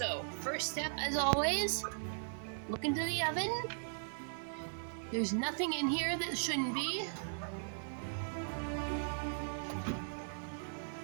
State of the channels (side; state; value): left; silent; digital silence